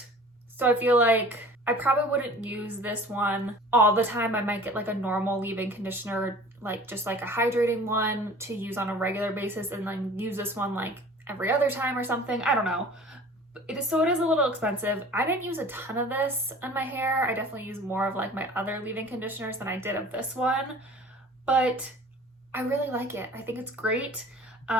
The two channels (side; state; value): both; normal; correlation 0.45